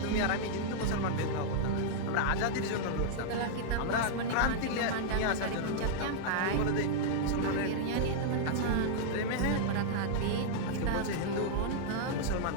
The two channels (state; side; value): different; both; correlation -0.02